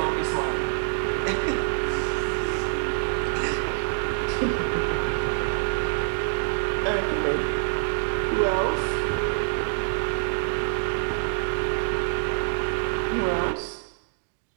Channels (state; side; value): silent; left; digital silence